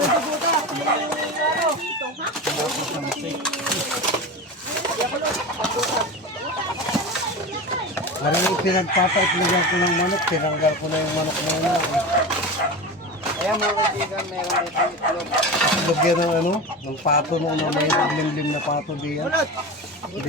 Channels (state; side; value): normal; both; correlation 0.27